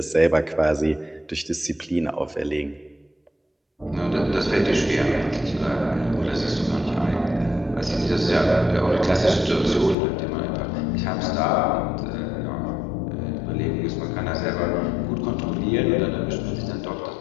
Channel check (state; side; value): drops out; right; at 10.0 s